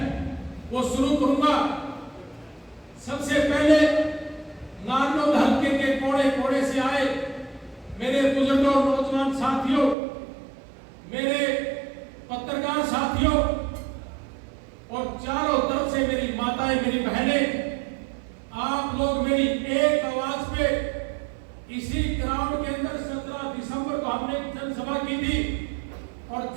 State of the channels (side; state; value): left; drops out; at 10.0 s